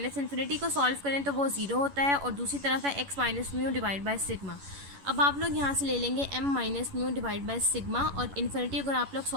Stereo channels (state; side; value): late; left; 11 ms